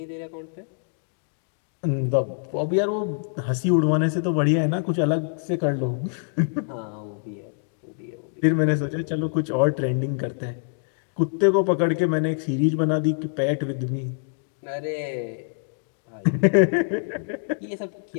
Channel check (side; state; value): right; silent; digital silence